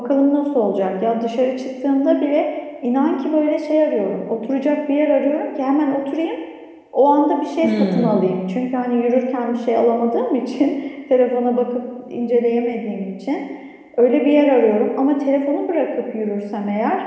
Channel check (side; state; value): both; identical; correlation 1.00